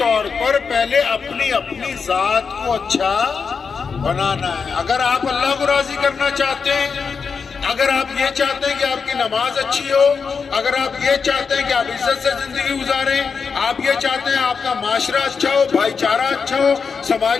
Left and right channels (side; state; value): right; quieter; 5.5 dB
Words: پر پہلے اپنی اپنی ذات کو اچھا بنانا ہے۔ اگر آپ اللہ کو راضی کرنا چاہتے ہیں، اگر آپ یہ چاہتے ہیں کہ آپ کی نماز اچھی ہو، اگر آپ یہ چاہتے ہیں کہ آپ عزت سے زندگی گزاریں، آپ یہ چاہتے ہیں آپ کا معاشرہ اچھا ہو، بھائی چارہ اچھا ہو،